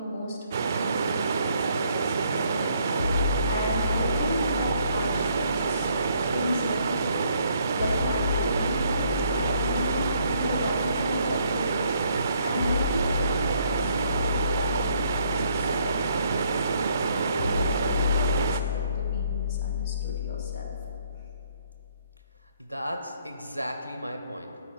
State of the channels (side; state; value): both; inverted; correlation -0.68